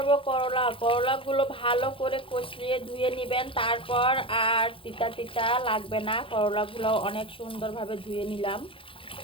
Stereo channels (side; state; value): right; late; 0.26 ms